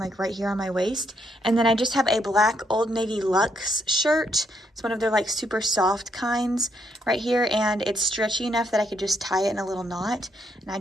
right here on my waist. And then I just have a black Old Navy Luxe shirt. It's one of their like super soft kinds right here, and it's stretchy enough that I could just tie it in a little knot. And I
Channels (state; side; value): normal; both; correlation 0.75